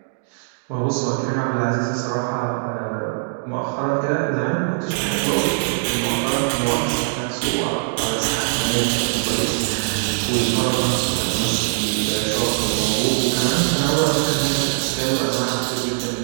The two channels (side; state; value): left; silent; digital silence